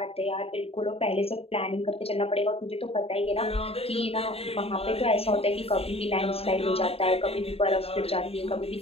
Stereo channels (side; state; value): right; late; 0.28 ms